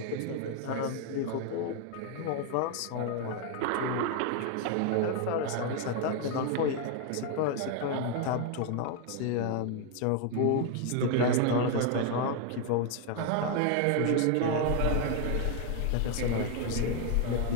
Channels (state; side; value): different; both; correlation 0.01